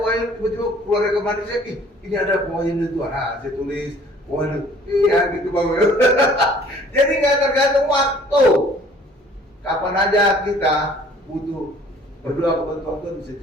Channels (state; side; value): normal; both; correlation 0.54